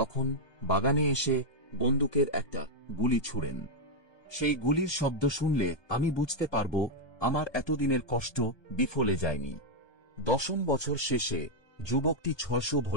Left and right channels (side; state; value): right; late; 1.2 ms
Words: বাগানে এসে বন্দুকের একটা গুলি ছোড়েন। সেই গুলির শব্দ শুনলে আমি বুঝতে পারব আমার এতদিনের কষ্ট বিফলে যায়নি। 10ম বছর শেষে যুবকটি 600